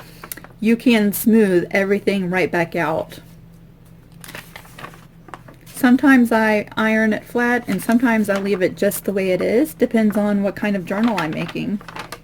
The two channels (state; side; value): identical; both; correlation 1.00